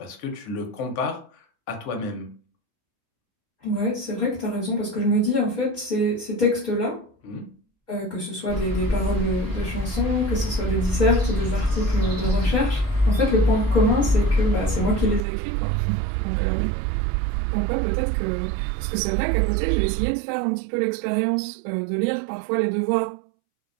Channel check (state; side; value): drops out; left; at 15.2 s